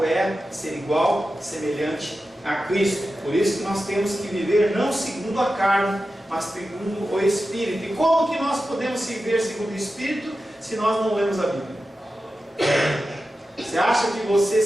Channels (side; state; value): both; normal; correlation 0.92